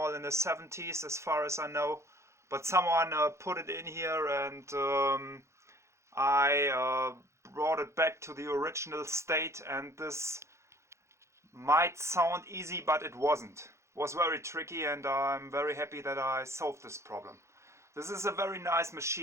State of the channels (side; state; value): left; late; 0.14 ms